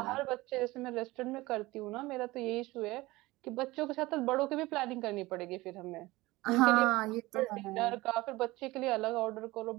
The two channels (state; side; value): quieter; left; 20.0 dB